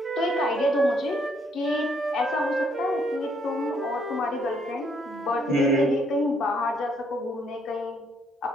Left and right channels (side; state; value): both; normal; correlation 0.70